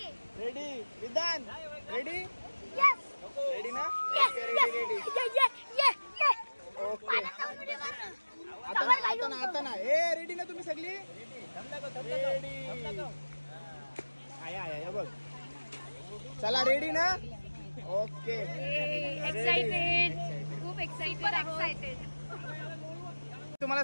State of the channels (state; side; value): inverted; both; correlation -1.00